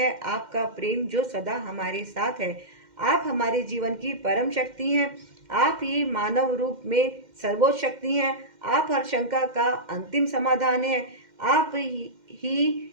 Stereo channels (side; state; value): left; late; 2.1 ms